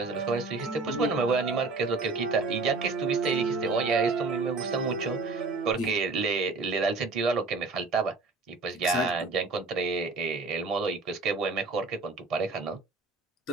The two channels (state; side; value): quieter; left; 3.8 dB